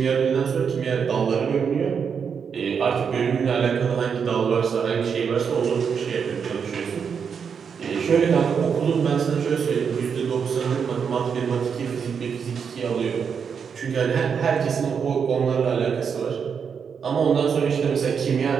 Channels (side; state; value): left; quieter; 6.6 dB